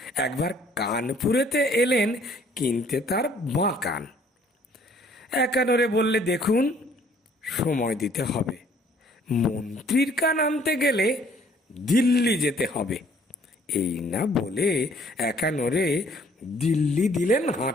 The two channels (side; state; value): both; normal; correlation 0.60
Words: একবার কানপুরেতে এলেন কিনতে তার বাঁ কান। একানোরে বললে, দেখুন সময় দিতে হবে, মন্ত্রীর কান আনতে গেলে দিল্লি যেতে হবে। এই না বলে একানোরে দিল্লি দিলেন